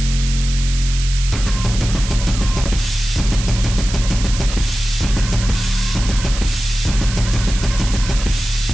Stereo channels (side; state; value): right; noise; hiss, 9 dB below the sound